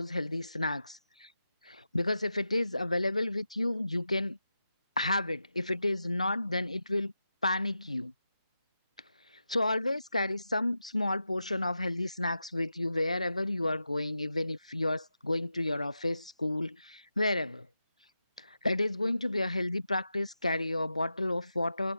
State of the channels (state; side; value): inverted; both; correlation -0.90